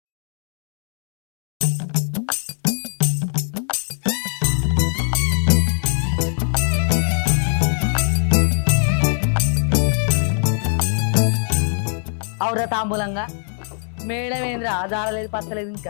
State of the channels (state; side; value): silent; right; digital silence